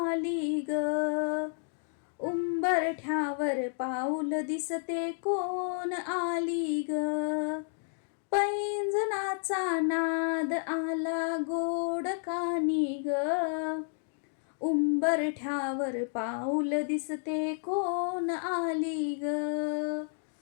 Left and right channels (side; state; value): right; silent; digital silence